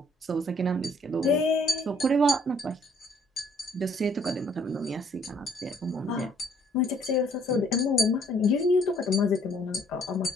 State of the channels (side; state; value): both; normal; correlation 0.63